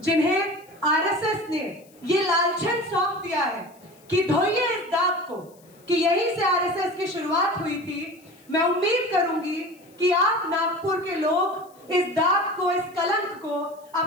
जिन्हें आरएसएस ने ये लालछन सौंप दिया है कि धोइए इस दाग को, कि यहीं से आरएसएस की शुरुआत हुई थी, मैं उम्मीद करूंगी कि आप नागपुर के लोग इस दाग को, इस कलंक को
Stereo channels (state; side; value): noise; left; hiss, 29 dB below the sound